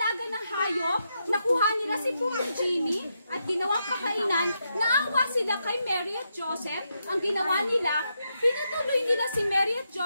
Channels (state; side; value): inverted; both; correlation -0.82